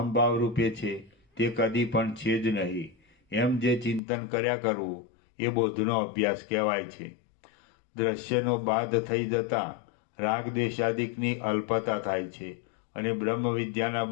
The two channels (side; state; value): right; drops out; at 4.0 s